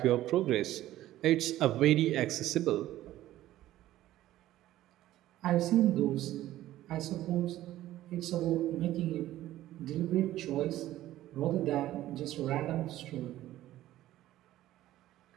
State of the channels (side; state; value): left; quieter; 14.4 dB